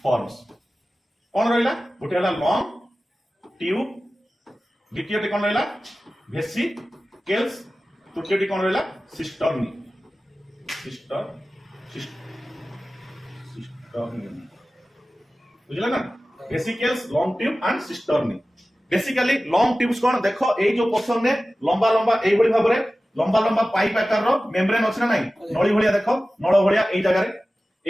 forms कोन रहला गुटे हला लॉन्ग ट्यूब द्वितीयटी कोन रहला वेसिकल्स तृतीयटी कोन रहला सिस्टर्नी बुझला ना vesicles long tube and cisternae basically long tubes कोन देखो ए जो पोर्शन ने लंबा लंबा एई भली भाबरे लंबा लंबा पाइप आकार रो मेम्ब्रेन अछि ना नाही नळी भलिया देखो नळ भलिया एई जगह रे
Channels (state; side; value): normal; both; correlation 0.96